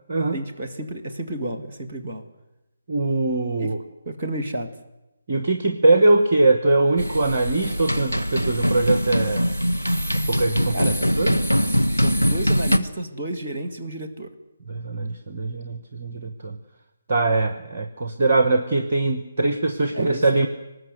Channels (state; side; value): inverted; both; correlation -0.88